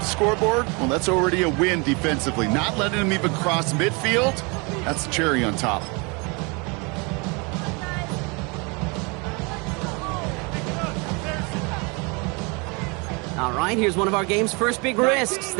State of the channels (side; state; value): left; quieter; 29.9 dB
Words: scoreboard, well, that's already a win defensively. Not letting them even cross midfield, that's the cherry on top. All right, here's one of our game's first big risks.